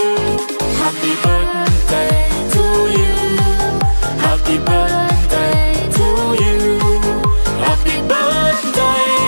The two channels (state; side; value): inverted; both; correlation -1.00